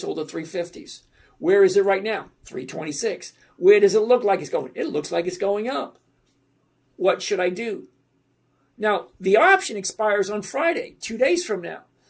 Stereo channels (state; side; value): identical; both; correlation 1.00